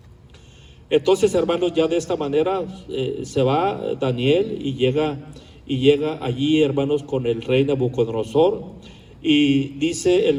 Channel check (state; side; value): identical; both; correlation 1.00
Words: Entonces, hermanos, ya de esta manera se va Daniel y llega allí, hermanos, con el rey Nabucodonosor, y dice